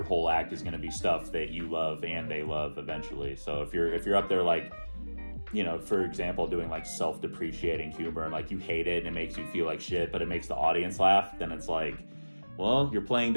whole act is going to be stuff that you love and they love eventually. So if you're up there for example, doing like self-depreciating humor and like you hate it and it makes you feel like shit, but it makes the audience laugh, then it's like, well, you're playing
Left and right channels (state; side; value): inverted; both; correlation -1.00